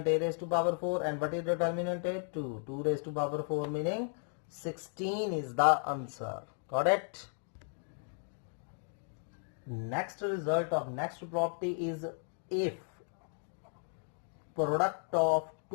A raise to power 4 and what is determinant A, 2 raise to power 4 meaning 16 is the answer, got it. Next result of next property is if product of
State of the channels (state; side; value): silent; right; 55 dB below the other